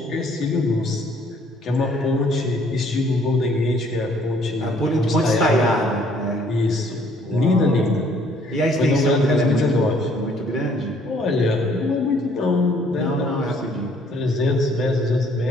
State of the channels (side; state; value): both; normal; correlation 0.62